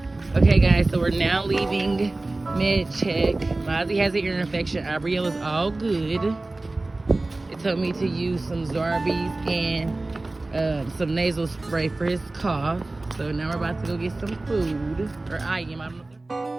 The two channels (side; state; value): left; quieter; 3.0 dB